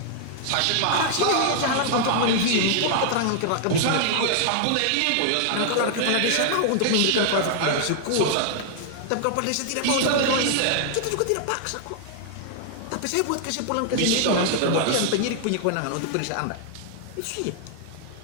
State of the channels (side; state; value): both; different; correlation -0.01